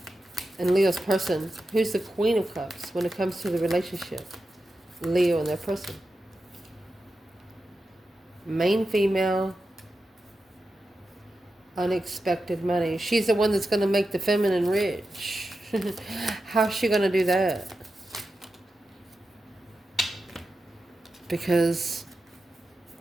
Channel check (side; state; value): both; normal; correlation 0.91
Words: And Leo's person. Who's the Queen of Cups when it comes to the relationship? Leo and their person. Main female. Unexpected money. She's the one that's going to make the feminine rich. How's she going to do that? Because